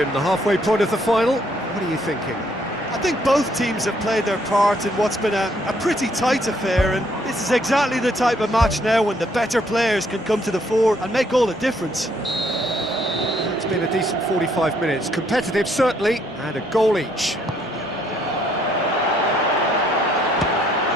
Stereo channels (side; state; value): both; normal; correlation 0.68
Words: the halfway point of the final, what are you thinking? I think both teams have played their part in what's been a pretty tight affair, and this is exactly the type of match now when the better players can come to the fore and make all the difference. It's been a decent 45 minutes, competitive certainly, and a goal each.